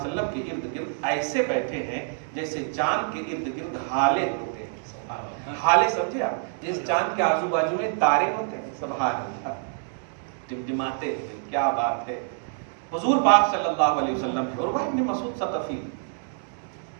کے ارد گرد ایسے بیٹھے ہیں جیسے چاند کے ارد گرد ہالے ہوتے ہیں۔ ہالے سمجھے آپ؟ جس چاند کے آزو بازو میں تارے ہوتے ہیں، سبحان اللہ، ٹمٹماتے ہیں، کیا بات ہے۔ حضور پاک صلی اللہ علیہ وسلم ہے، عروہ ابن مسعود ثقفی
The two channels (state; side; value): silent; left; digital silence